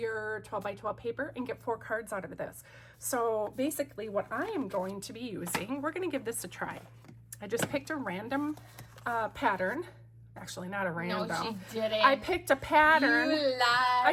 12 by 12 paper and get 4 cards out of this. So basically what I am going to be using, we're going to give this a try. I just picked a random pattern. Actually, not a random. No, she didn't. I picked a pattern. You lied.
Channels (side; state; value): both; identical; correlation 1.00